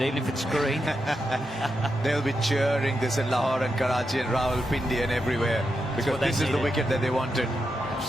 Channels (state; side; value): normal; both; correlation 0.86